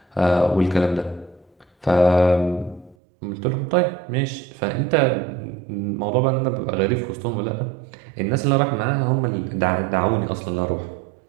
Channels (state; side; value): drops out; left; at 3.0 s